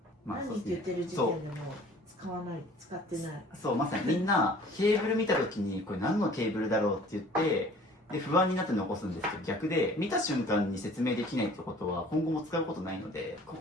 何って言ってる時点でも使ってない。そう、まさにみんなケーブル見た時にこれ何のケーブルだろうって言って、で不安になって残すんですけど、逆で見た瞬間に説明できないってことは今後も使うことないので、こ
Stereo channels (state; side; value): normal; both; correlation 0.50